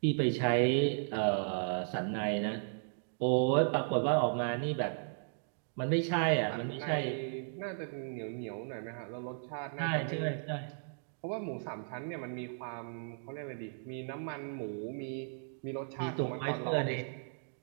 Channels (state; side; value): silent; left; digital silence